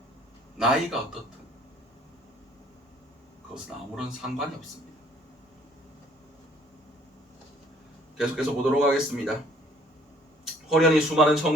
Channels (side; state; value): both; normal; correlation 0.59